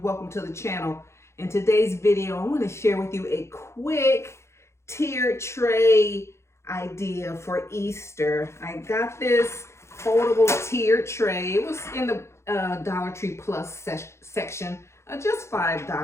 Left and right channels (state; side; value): late; right; 0.13 ms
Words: welcome to the channel. In today's video, I want to share with you a quick tiered tray idea for Easter. I got this foldable tiered tray. It was in the Dollar Tree Plus section, just